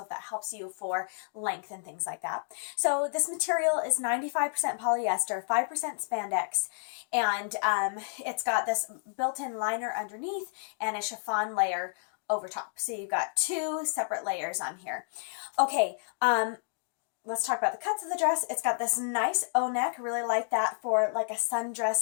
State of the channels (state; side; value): silent; right; digital silence